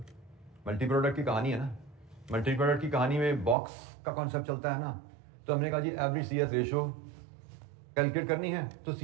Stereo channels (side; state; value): left; drops out; at 3.6 s